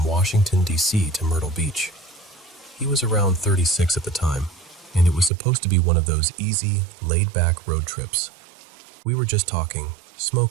Washington, D.C. to Myrtle Beach. He was around 36 at the time, and it was supposed to be one of those easy, laid-back road trips. We were just talking,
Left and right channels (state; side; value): drops out; left; at 5.3 s